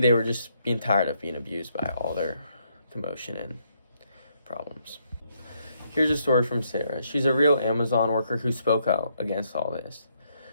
were just being tired of being abused by all their commotion and problems. Here's a story from Sarah. She's a real Amazon worker who spoke out against all this.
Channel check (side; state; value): both; inverted; correlation -0.74